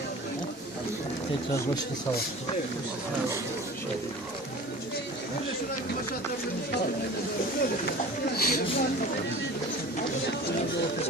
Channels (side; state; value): both; normal; correlation 0.39